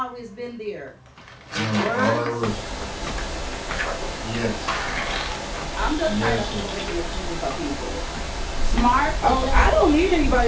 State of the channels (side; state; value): both; identical; correlation 1.00